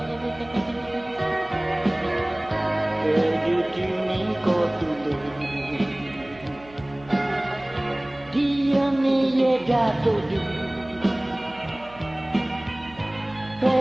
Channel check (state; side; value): noise; right; hum, 22 dB below the sound